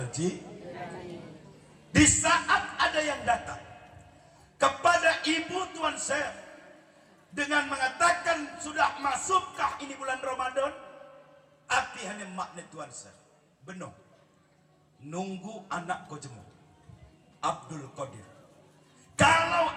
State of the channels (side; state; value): both; identical; correlation 1.00